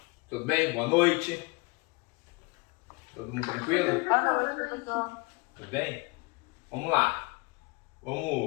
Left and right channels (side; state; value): right; quieter; 26.6 dB